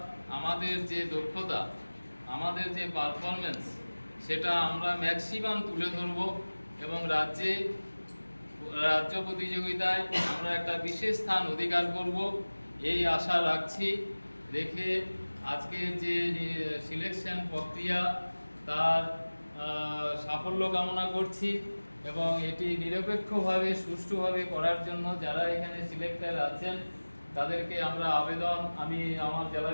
আমাদের যে দক্ষতা, আমাদের যে পারফরমেন্স, সেটা আমরা ম্যাক্সিমাম তুলে ধরব এবং রাজ্য প্রতিযোগিতায় আমরা একটা বিশেষ স্থান অধিকার করব, এই আশা রাখছি। রেখে আজকের যে সিলেকশন প্রক্রিয়া, তার সাফল্য কামনা করছি এবং এটি নিরপেক্ষভাবে সুষ্ঠুভাবে করার জন্য যারা এখানে সিলেক্টর আছেন তাদেরকে আমরা আমি আমার জেলা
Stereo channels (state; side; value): inverted; both; correlation -1.00